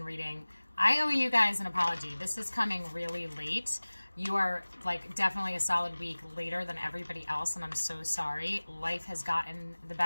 reading. I owe you guys an apology. This is coming really late. You are like definitely a solid week later than everybody else, and I'm so sorry. Life has gotten the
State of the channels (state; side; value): inverted; both; correlation -1.00